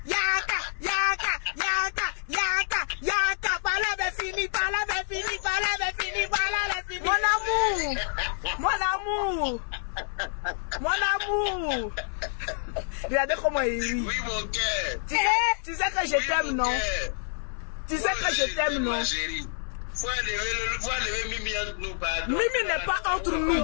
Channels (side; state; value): right; silent; 60 dB below the other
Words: Parole est finie. Mon amour. Regardez comment il rit. Oui, mon cœur. Tu sais que je t'aime, non? Tu sais que je t'aime, non? Faut enlever Mimi entre nous, pardon. Mimi n'est pas entre nous.